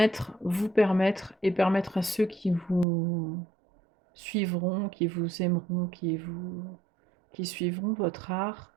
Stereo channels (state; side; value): drops out; left; at 2.9 s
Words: vous permettre et permettre à ceux qui vous suivront, qui vous aimeront, qui suivront votre art,